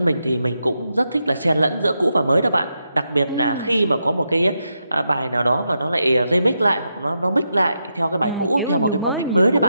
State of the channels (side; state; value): both; inverted; correlation -0.84